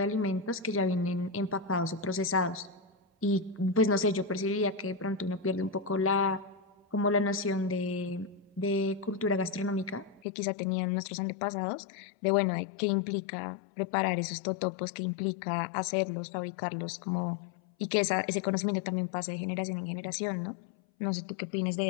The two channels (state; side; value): drops out; right; at 10.2 s